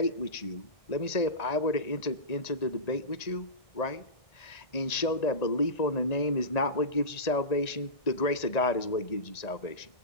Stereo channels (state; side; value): late; right; 1.9 ms